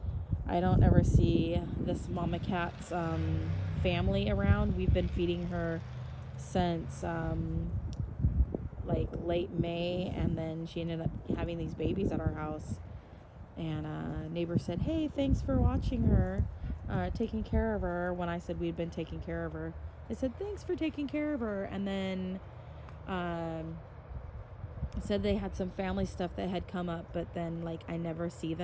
I don't ever see this mama cat's family around. We've been feeding her since late May, and then she ended up having these babies at our house, and a neighbor said, "Hey, thanks for watching her, taking care of her," when I said we'd been taking care of her. They said, "Thanks for taking care of her," and then said they had some family stuff that had come up, but then I never see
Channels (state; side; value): identical; both; correlation 1.00